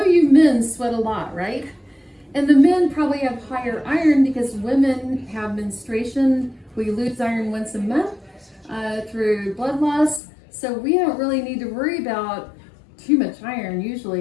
you men sweat a lot, right? And the men probably have higher iron because women have menstruation. We lose iron once a month through blood loss. So we don't really need to worry about too much iron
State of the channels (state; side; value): drops out; right; at 10.2 s